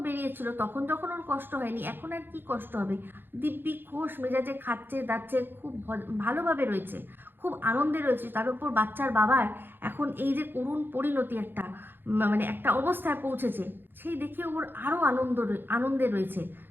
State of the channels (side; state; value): left; late; 0.099 ms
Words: বেরিয়েছিল তখন যখন ওর কষ্ট হয়নি, এখন আর কি কষ্ট হবে? দিব্যি খোশ মেজাজে খাচ্ছে দাচ্ছে, খুব ভালোভাবে রয়েছে, খুব আনন্দে রয়েছে। তার উপর বাচ্চার বাবার এখন এই যে করুণ পরিণতি, একটা মানে একটা অবস্থায় পৌঁছেছে, সেই দেখে ওর আরও আনন্দে রয়েছে।